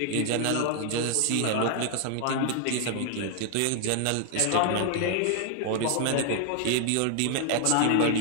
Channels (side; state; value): both; different; correlation 0.00